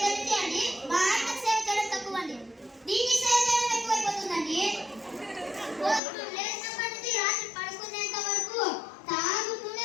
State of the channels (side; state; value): right; drops out; at 6.0 s